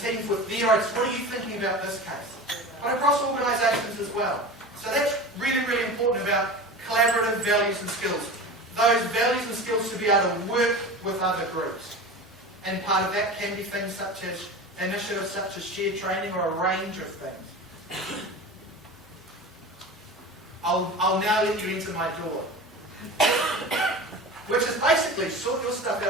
team with their ideas. What are you thinking about this case? But across organisations as well. So that's really, really important about collaborative values and skills. Those values and skills to be able to work with other groups. And part of that can be things such as initiatives such as shared training or a range of things. I'll now let you into my door. Which is basically sort your stuff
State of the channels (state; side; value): normal; both; correlation 0.32